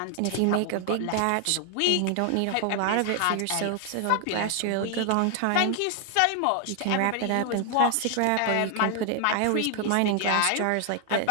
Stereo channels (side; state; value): both; different; correlation 0.00